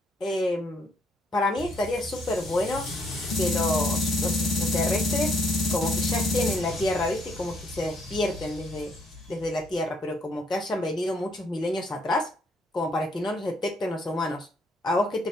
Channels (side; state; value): both; normal; correlation 0.69